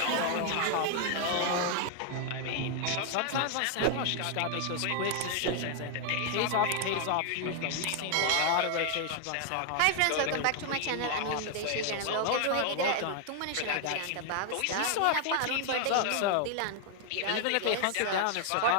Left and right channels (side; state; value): both; different; correlation 0.00